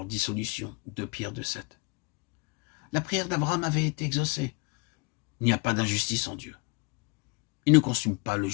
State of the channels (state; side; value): quieter; right; 29.5 dB